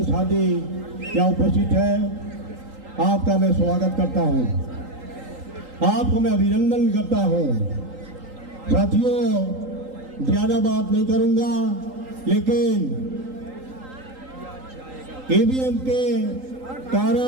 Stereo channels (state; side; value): late; left; 3.8 ms